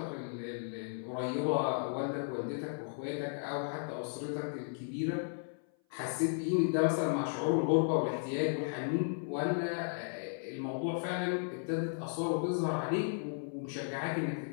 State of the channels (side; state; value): right; silent; 54 dB below the other